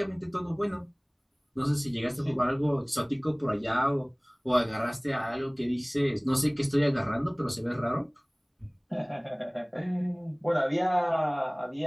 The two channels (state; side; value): identical; both; correlation 1.00